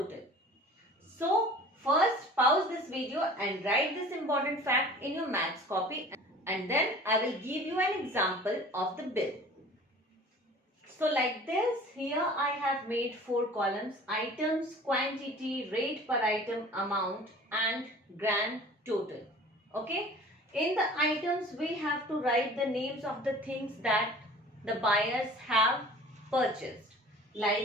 So first pause this video and write this important fact in your maths copy, and then I will give you an example of the bill. So like this, here I have made 4 columns: items, quantity, rate per item, amount and grand total. Okay. In the items, we have to write the names of the things that the buyers have purchased,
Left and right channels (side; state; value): both; normal; correlation 0.45